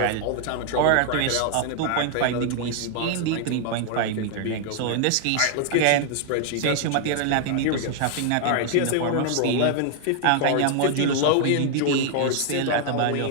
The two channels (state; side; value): different; both; correlation 0.00